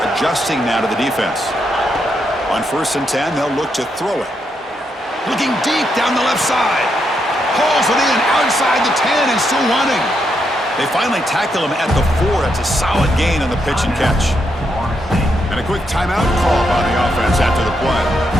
adjusting now to the defense. On 1st and 10, they'll look to throw it. Looking deep down the left side. Hauls it in outside the 10 and still running. They finally tackle him at the 4. That's a solid gain on the pitch and catch. And a quick timeout call by the offense after the play.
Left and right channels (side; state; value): both; normal; correlation 0.80